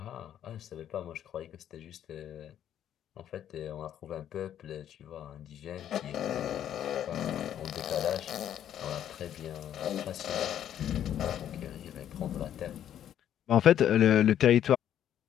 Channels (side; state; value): right; quieter; 10.4 dB